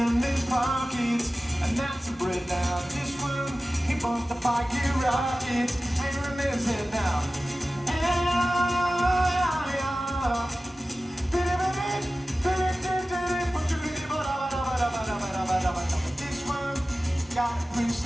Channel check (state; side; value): normal; both; correlation 0.96